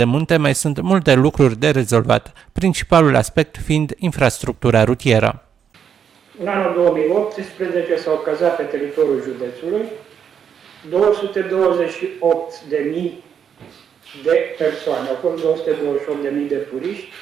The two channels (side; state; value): left; quieter; 7.9 dB